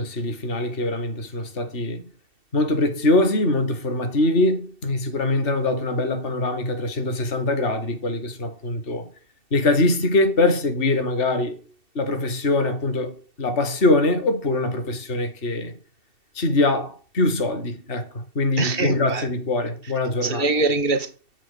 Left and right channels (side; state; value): right; late; 2.7 ms